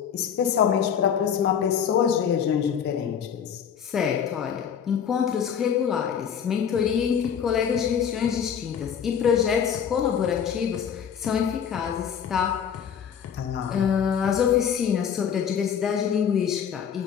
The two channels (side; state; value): right; quieter; 7.9 dB